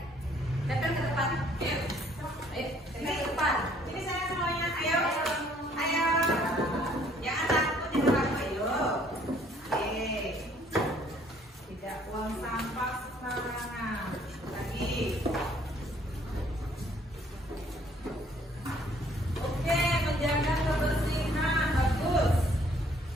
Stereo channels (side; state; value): both; normal; correlation 0.61